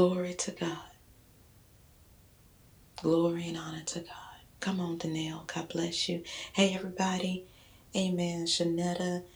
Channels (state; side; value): identical; both; correlation 1.00